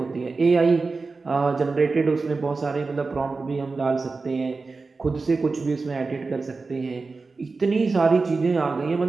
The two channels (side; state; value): left; quieter; 4.0 dB